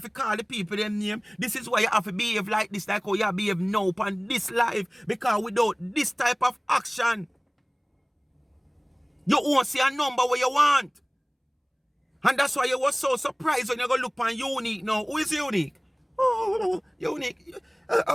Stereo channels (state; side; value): identical; both; correlation 1.00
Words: to call the people them name. This is why you have to behave like this, like how you behave now on this life. Because without this type of action, you won't see a number where you want. And that's why you was so surprised when you go look on Unique now. Who is Unique? Oh, Unique.